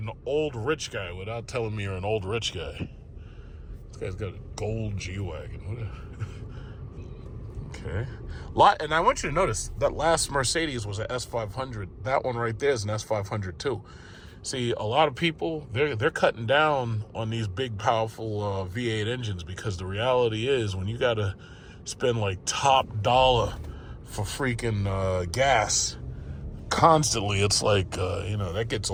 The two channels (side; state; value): both; identical; correlation 1.00